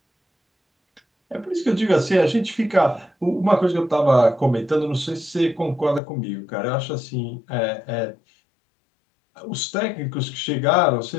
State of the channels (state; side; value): drops out; right; at 6.0 s